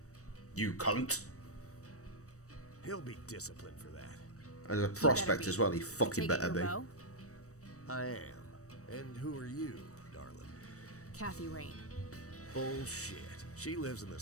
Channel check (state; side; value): late; right; 0.65 ms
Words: You cunt. He'll be disciplined for that. As a prospect as well, he fucking better be. I am. And who are you, darling? Kathy Rain. Bullshit. She lives in the